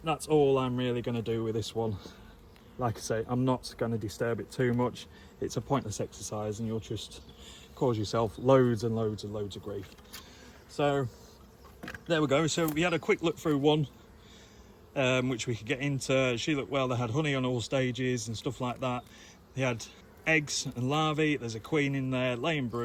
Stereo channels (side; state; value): both; identical; correlation 1.00